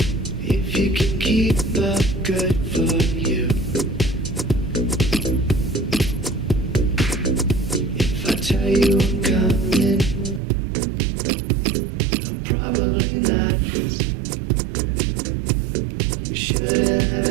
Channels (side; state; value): left; drops out; at 10.4 s